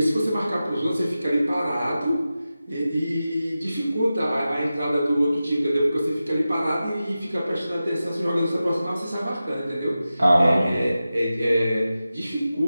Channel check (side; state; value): both; inverted; correlation -0.94